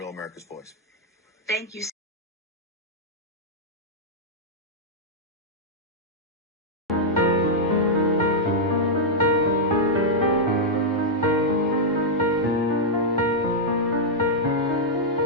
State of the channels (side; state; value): both; normal; correlation -0.05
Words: America's Voice. Thank you.